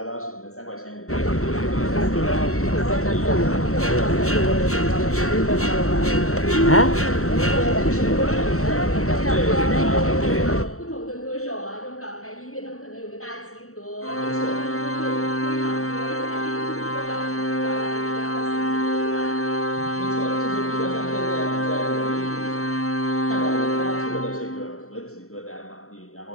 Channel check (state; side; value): late; right; 0.64 ms